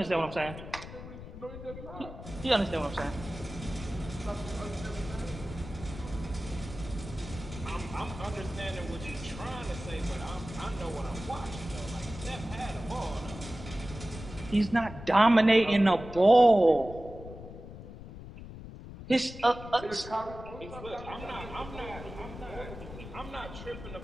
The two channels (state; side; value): noise; left; rumble, 12 dB below the sound